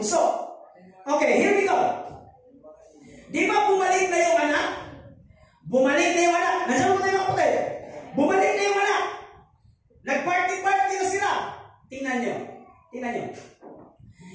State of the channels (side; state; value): both; identical; correlation 1.00